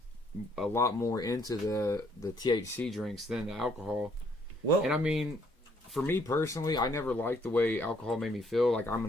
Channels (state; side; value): normal; both; correlation 0.67